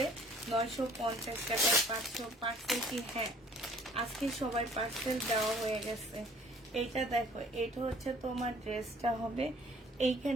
950 টাকা। 500 পার্সেল কি? হ্যাঁ আজকে সবাই পার্সেল দেওয়া হয়ে গেছে। এইটা দেখো, এটা হচ্ছে তোমার ড্রেসটা হবে।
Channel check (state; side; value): normal; both; correlation 0.54